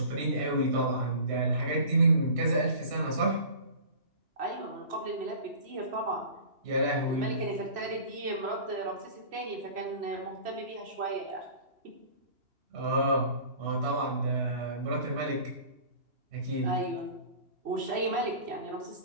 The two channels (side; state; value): left; late; 3.0 ms